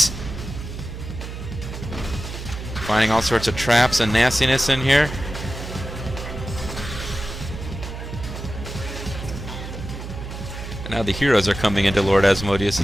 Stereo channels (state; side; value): noise; right; hum, 9 dB below the sound